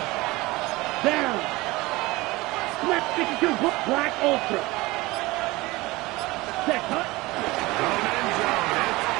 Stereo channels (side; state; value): left; quieter; 21.0 dB